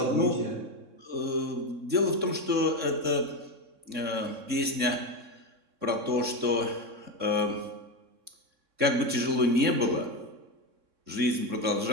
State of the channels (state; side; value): late; left; 3.6 ms